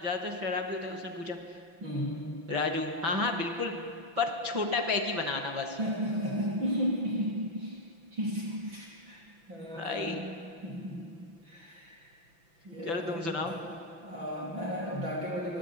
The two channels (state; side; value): late; left; 5.9 ms